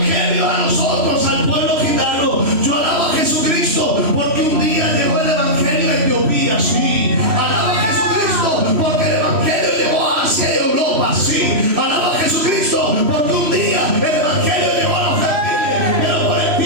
a nosotros, al pueblo gitano. Yo alabo a Jesucristo porque un día llegó el evangelio a Etiopía, sí. Alaba a Jesucristo porque el evangelio llegó a Asia y Europa, sí. Alaba a Jesucristo porque un día el evangelio llegó a los gentiles, pero por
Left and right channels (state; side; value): late; left; 3.1 ms